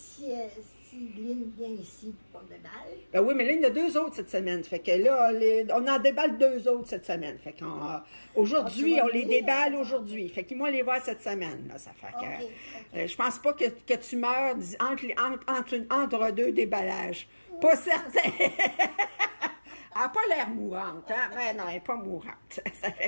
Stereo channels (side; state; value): both; inverted; correlation -1.00